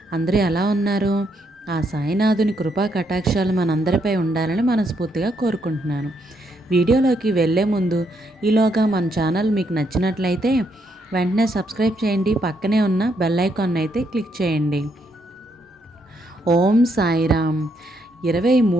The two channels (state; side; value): normal; both; correlation 0.76